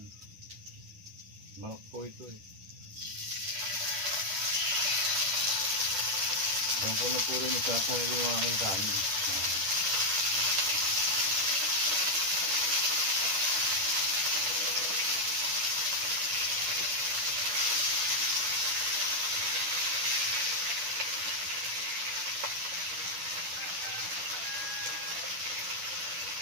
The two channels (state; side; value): late; left; 10 ms